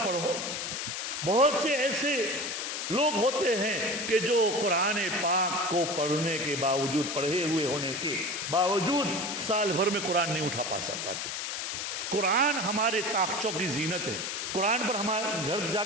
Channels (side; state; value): left; noise; hiss, 3 dB below the sound